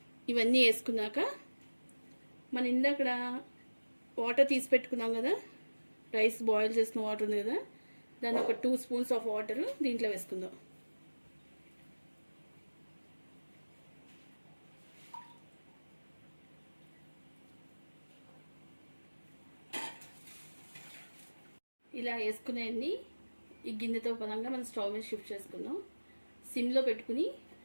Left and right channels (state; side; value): inverted; both; correlation -1.00